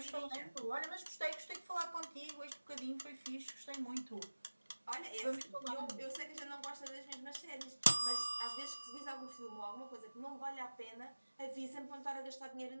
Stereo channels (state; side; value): inverted; both; correlation -1.00